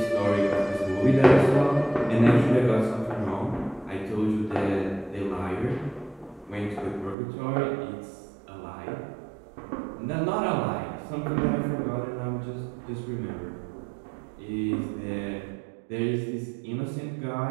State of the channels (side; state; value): left; drops out; at 7.2 s